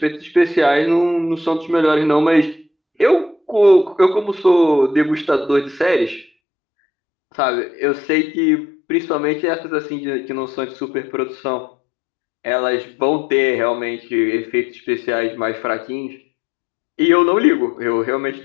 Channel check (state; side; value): drops out; right; at 6.2 s